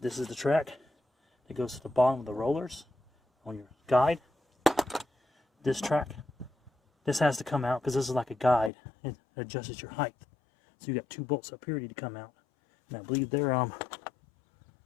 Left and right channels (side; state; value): right; drops out; at 8.7 s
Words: is the track that goes to the bottom of the rollers on your guide. This track, this has to come out because this is like a guide. It adjusts your height. So you got 2 bolts up here ready to come out. And I believe they're